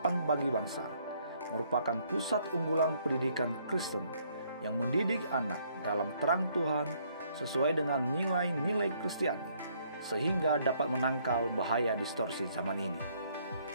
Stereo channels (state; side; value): inverted; both; correlation -0.67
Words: Bagi Bangsa merupakan pusat unggulan pendidikan Kristen yang mendidik anak dalam terang Tuhan sesuai dengan nilai-nilai Kristiani, sehingga dapat menangkal bahaya distorsi zaman ini.